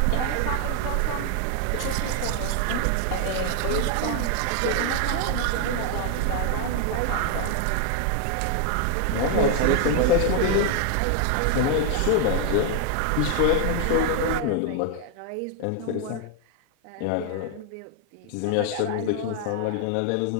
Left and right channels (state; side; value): different; both; correlation 0.00